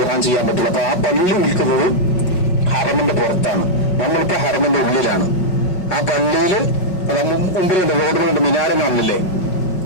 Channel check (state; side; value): late; right; 5.4 ms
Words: ചെയ്യാൻ പറ്റില്ല. അപ്പൊ ആ പള്ളി നിൽക്കുന്നത് ഹറമിന്റെ പുറത്താണ്. നമ്മളിപ്പോ ഹറമിന്റെ ഉള്ളിലാണ്. ആ പള്ളിയില് മുമ്പിലുണ്ട്, റോഡിലുണ്ട് മിനാരം കാണില്ലേ,